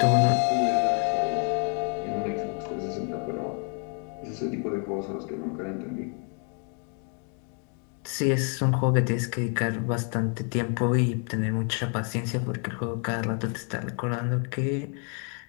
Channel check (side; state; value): right; quieter; 39.8 dB